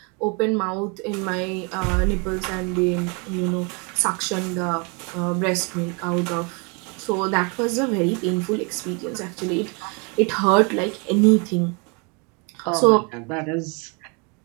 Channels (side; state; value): left; quieter; 32.2 dB